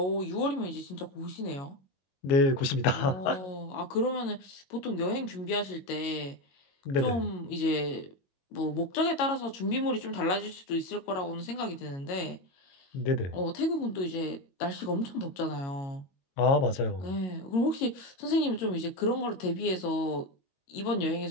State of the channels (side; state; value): right; late; 22 ms